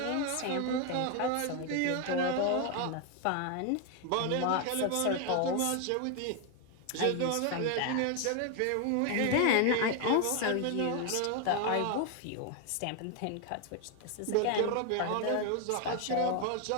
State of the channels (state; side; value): different; both; correlation 0.01